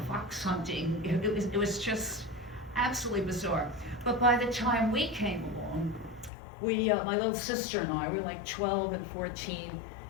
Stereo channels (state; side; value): drops out; right; at 6.3 s